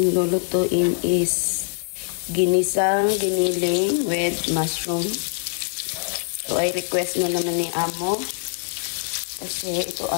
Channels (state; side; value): silent; right; digital silence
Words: lulutuin is ginisang giniling with mushroom. So ay request na naman ni Amo. Kasi ito